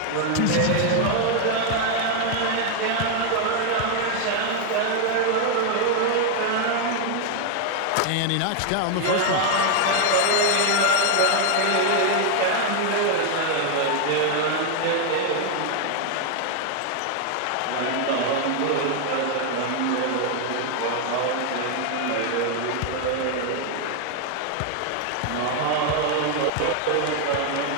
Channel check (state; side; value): different; both; correlation 0.00